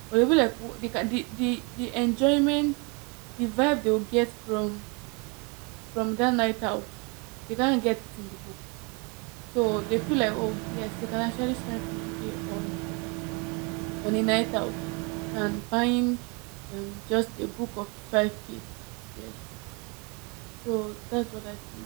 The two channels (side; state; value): left; quieter; 31.7 dB